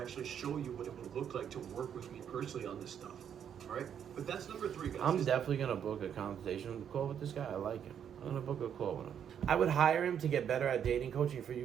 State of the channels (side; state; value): left; quieter; 8.6 dB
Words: show you what it would look like to work with me personally on this stuff. All right, but that's number 3, guys. I'm definitely gonna book a consultation call with this guy. I like him. I'm gonna book a call with him. I would hire him to get better at dating coaching for